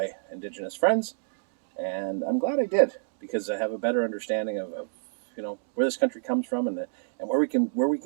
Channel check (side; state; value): left; silent; digital silence